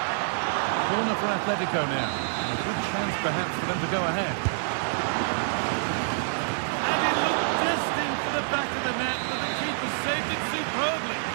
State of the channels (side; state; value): left; silent; digital silence